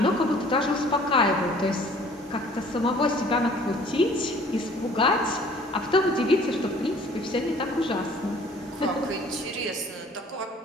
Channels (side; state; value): both; normal; correlation 0.53